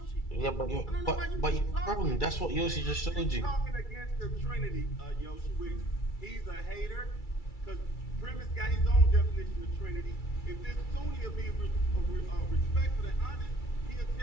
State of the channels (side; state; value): right; late; 2.3 ms